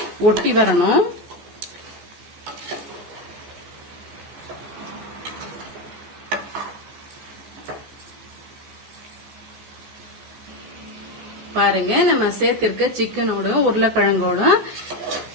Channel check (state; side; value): late; left; 14 ms